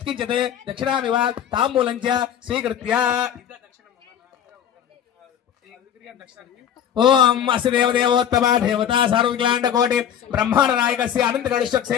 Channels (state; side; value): quieter; right; 9.4 dB